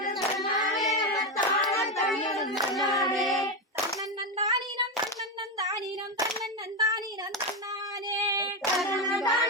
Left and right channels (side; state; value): both; normal; correlation 0.11